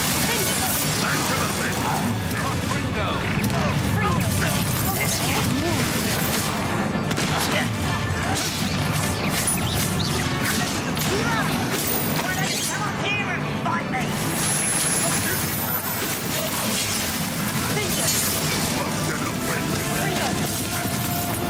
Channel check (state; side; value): identical; both; correlation 1.00